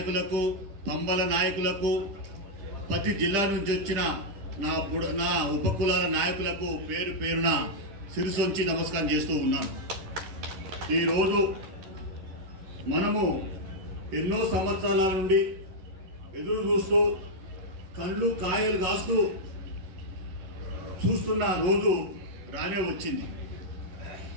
పంబల నాయకులకు, ప్రతి జిల్లా నుంచి వచ్చిన నా ఉపకులాల నాయకులకు పేరు పేరున శిరసొంచి నమస్కారం చేస్తూ ఉన్నాను. ఈరోజు మనము ఎన్నో సంవత్సరాల నుండి ఎదురు చూస్తూ కళ్ళు కాయలు కాస్తూ చూస్తున్న రోజు రానే వచ్చింది.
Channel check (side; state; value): left; late; 11 ms